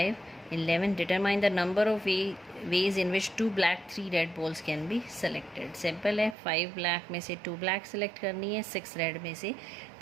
11। Determine the number of ways in which 2 black 3 red balls can be selected. Simple है, 5 black में से 2 ब्लैक सेलेक्ट करनी है, 6 रेड में से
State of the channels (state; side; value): drops out; left; at 6.4 s